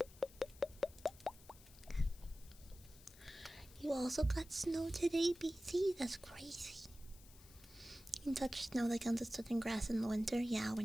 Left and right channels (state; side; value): noise; left; hiss, 22 dB below the sound